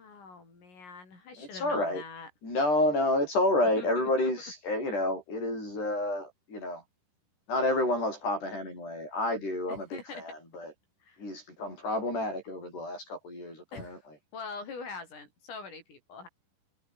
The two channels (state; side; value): late; right; 10 ms